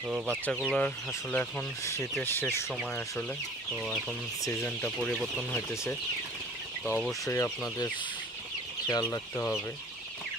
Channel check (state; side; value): normal; both; correlation 0.48